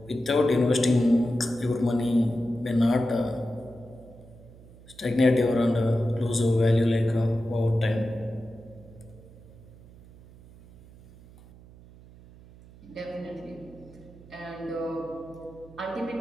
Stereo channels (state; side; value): noise; right; hum, 22 dB below the sound